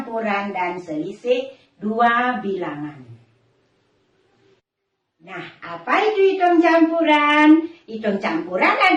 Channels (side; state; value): both; identical; correlation 1.00